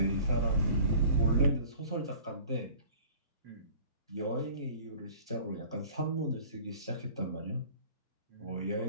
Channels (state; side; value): inverted; both; correlation -0.46